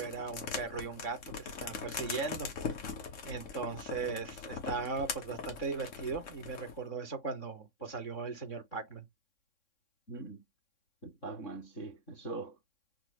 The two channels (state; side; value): late; right; 3.6 ms